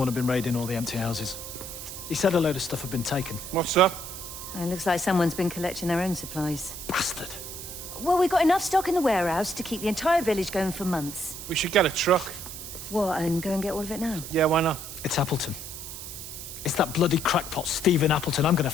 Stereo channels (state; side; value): noise; right; hiss, 10 dB below the sound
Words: had been raiding all the empty houses. He said a load of stuff had been taken. What's up? It looks like someone's been collecting their own supplies. Bastard. Well, we've got enough stock in the warehouse to keep the entire village going for months. We should get a truck. What, and go and get all of it now? Yeah, why not? It's Appleton. It's that bloody crackpot Stephen Appleton. I'm gonna